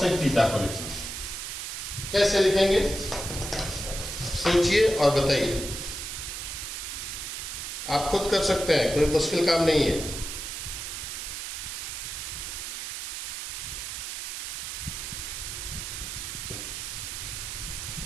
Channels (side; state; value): right; noise; hiss, 6 dB below the sound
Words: थीटा को लिखना हो। कैसे लिखेंगे सोचिए और बताइए, आप खुद कर सकते हैं, कोई मुश्किल काम नहीं है।